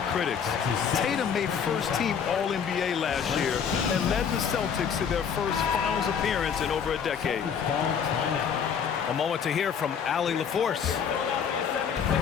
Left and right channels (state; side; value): quieter; right; 7.2 dB